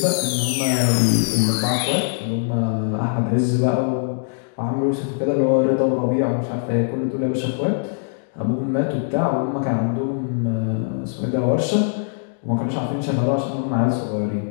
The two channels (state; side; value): silent; right; digital silence